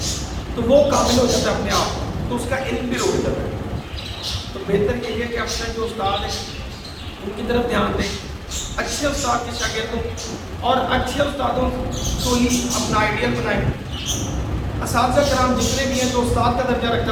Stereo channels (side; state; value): both; identical; correlation 1.00